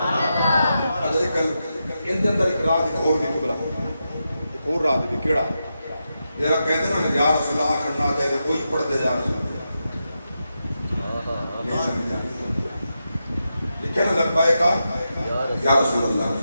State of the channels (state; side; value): inverted; both; correlation -0.87